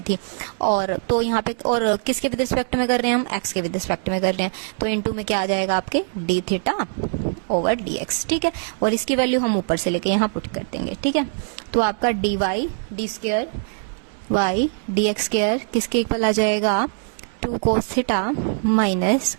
और तो यहाँ पे और किसके विद रिस्पेक्ट में कर रहे हैं हम, एक्स के विद रिस्पेक्ट में कर रहे हैं, तो इनटू में क्या आ जाएगा आपके D theta over D x. ठीक है, और इसकी वैल्यू हम ऊपर से लेके यहाँ पुट कर देंगे। ठीक है, तो आपका D Y D square Y D x square किसके इक्वल आ जाएगा, 2 cos theta minus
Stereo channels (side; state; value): left; silent; 64 dB below the other